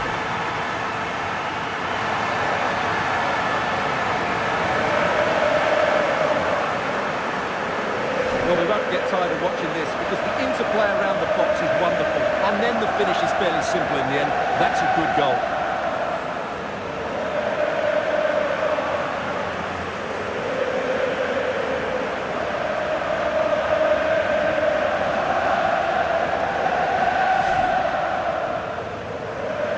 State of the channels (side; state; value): both; identical; correlation 1.00